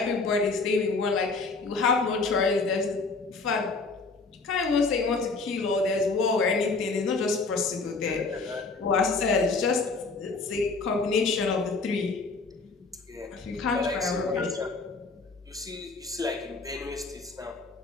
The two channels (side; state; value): right; quieter; 4.0 dB